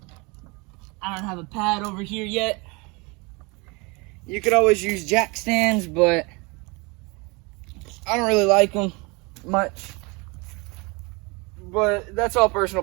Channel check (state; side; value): quieter; left; 27.8 dB